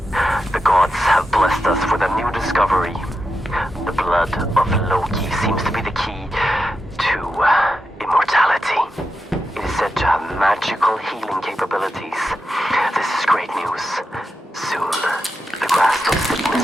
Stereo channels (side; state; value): both; normal; correlation 0.88